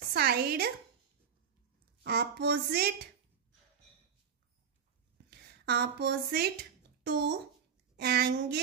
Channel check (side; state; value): left; quieter; 7.2 dB